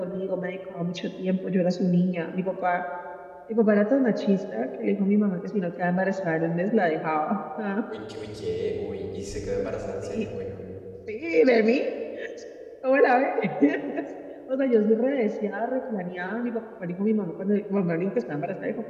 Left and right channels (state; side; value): identical; both; correlation 1.00